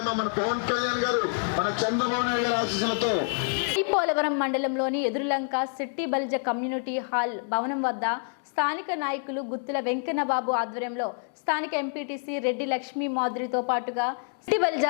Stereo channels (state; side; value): silent; right; 60 dB below the other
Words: అమ్మా, మన పవన్ కళ్యాణ్ గారు, మన చంద్రబాబు నాయుడు గారి ఆశీస్సులతో పోలవరం మండలంలోని ఎదురులంక సిట్టి బలిజ కమ్యూనిటీ హాల్ భవనం వద్ద స్థానిక నాయకులు గుత్తుల వెంకన్నబాబు ఆధ్వర్యంలో స్థానిక ఎంపీటీసీ రెడ్డి లక్ష్మీ మాధురితో పాటుగా సిట్టి బలిజ